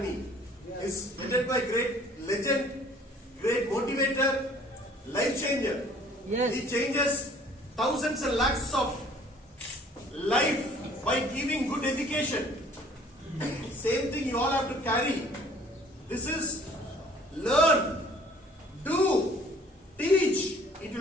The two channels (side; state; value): both; normal; correlation 0.55